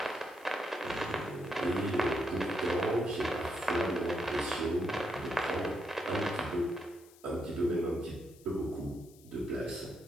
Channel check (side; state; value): left; noise; hiss, 25 dB below the sound